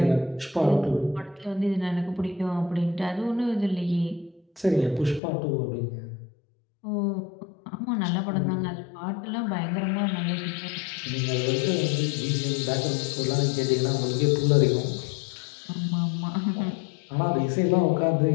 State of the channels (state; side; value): drops out; right; at 5.2 s